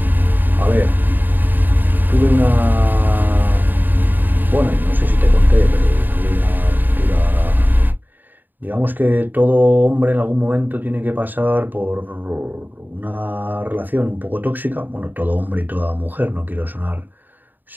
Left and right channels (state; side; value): late; left; 0.089 ms